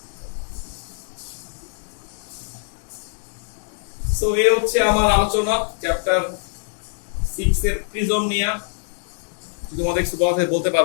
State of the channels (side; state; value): right; silent; digital silence